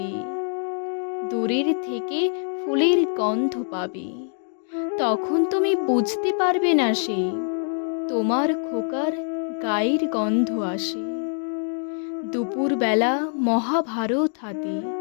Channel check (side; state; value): right; silent; 61 dB below the other